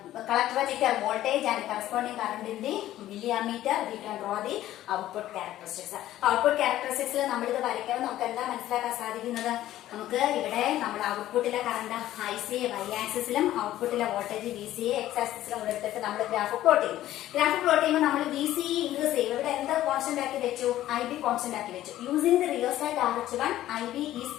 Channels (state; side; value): quieter; right; 13.8 dB